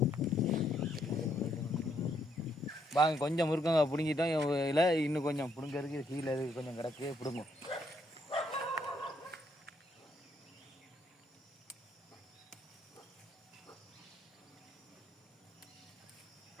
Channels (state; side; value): normal; both; correlation 0.73